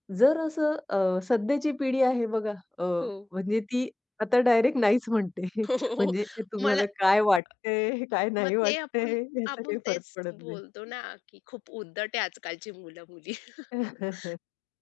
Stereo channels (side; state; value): right; drops out; at 7.4 s